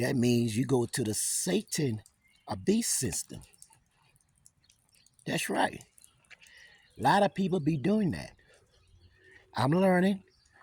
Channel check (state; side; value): identical; both; correlation 1.00